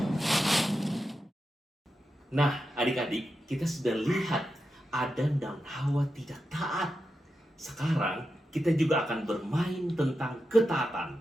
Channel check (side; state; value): both; normal; correlation 0.89